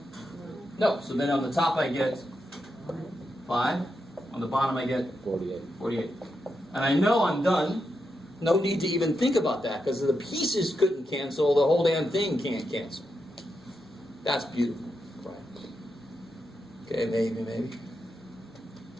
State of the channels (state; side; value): normal; both; correlation 0.85